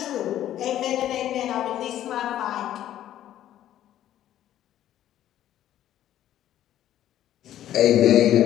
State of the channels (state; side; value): quieter; right; 12.1 dB